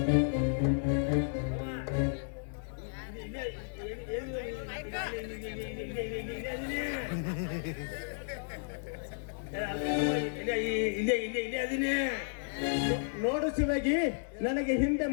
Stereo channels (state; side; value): silent; right; digital silence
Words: ನೋಡು ಶಿವಾಗಿ, ನನಗೆ ಹಿಂದೆ